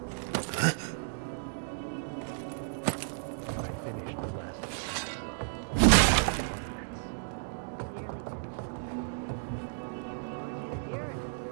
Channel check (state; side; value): silent; left; digital silence